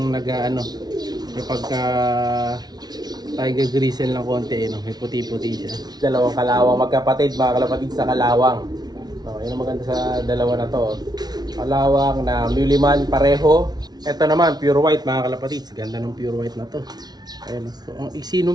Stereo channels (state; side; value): late; left; 0.19 ms